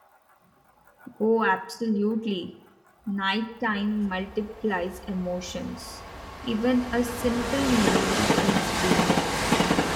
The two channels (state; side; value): identical; both; correlation 1.00